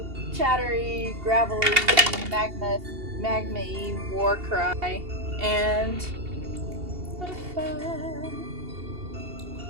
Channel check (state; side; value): late; left; 2.8 ms